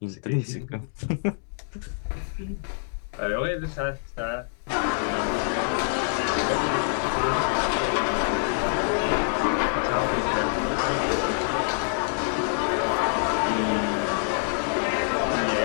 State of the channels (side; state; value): right; silent; digital silence